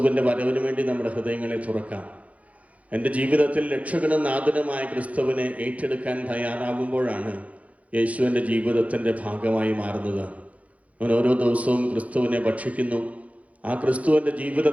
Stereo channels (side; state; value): left; late; 0.067 ms